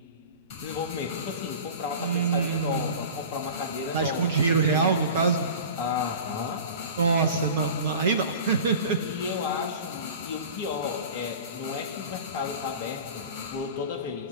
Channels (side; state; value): both; inverted; correlation -0.36